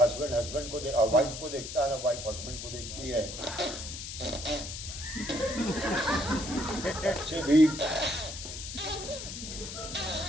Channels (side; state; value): left; noise; hiss, 8 dB below the sound